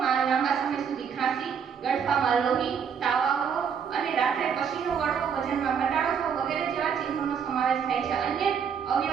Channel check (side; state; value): left; quieter; 7.1 dB